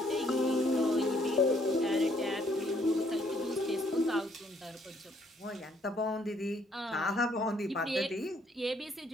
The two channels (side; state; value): both; normal; correlation 0.66